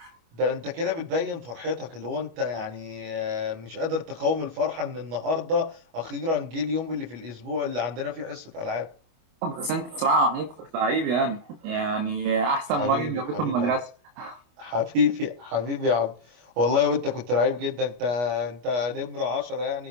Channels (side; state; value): left; late; 25 ms